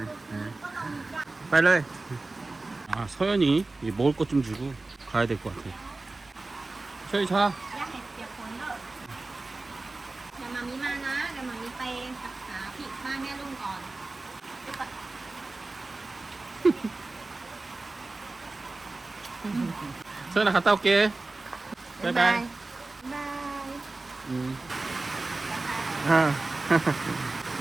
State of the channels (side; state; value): left; quieter; 3.3 dB